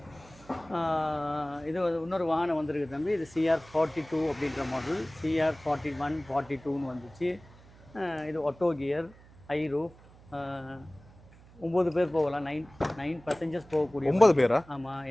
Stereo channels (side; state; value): right; noise; hum, 23 dB below the sound